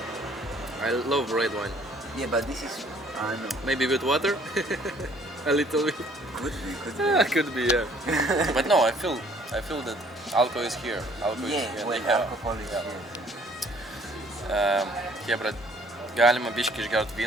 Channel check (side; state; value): both; normal; correlation 0.59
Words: I love red wine. yeah, but this is I don't know. Maybe with water? A little bit. Could be. Could be, yeah. But no, I feel that alcohol is here. Alcohol Yeah, is here. well, They have- alcohol is yeah. here. Hebra, galima biškį išgert